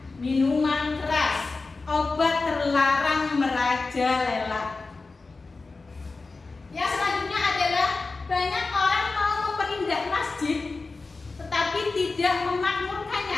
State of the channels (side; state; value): right; quieter; 3.8 dB